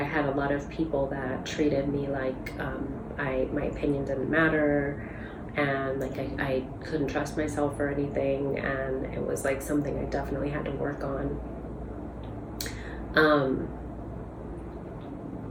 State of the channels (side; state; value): both; identical; correlation 1.00